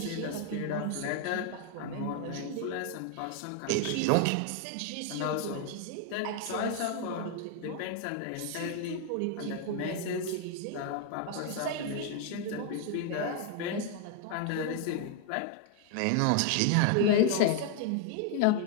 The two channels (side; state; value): both; different; correlation 0.00